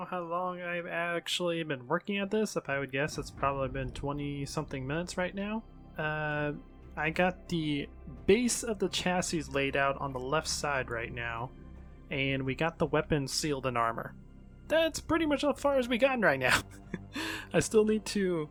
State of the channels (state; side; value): identical; both; correlation 1.00